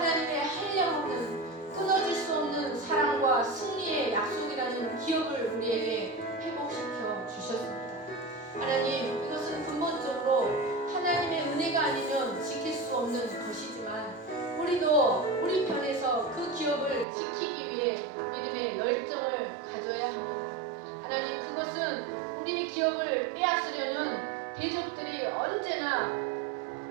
한량없는 끊어질 수 없는 사랑과 승리의 약속이라는 기업을 우리에게 회복시켜 주셨습니다. 하나님, 이것은 근본적으로 하나님의 은혜가 아니면 지킬 수 없는 것이지만 우리도 우리 편에서 그 기업을 지키기 위해 믿음의 열정을 가져야 합니다. 하나님, 그것은 우리의 기업을 빼앗으려는 대적들이 언제나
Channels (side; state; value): left; drops out; at 17.1 s